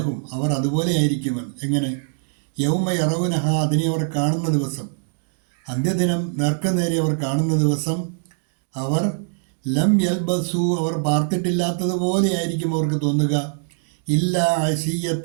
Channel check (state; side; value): silent; left; digital silence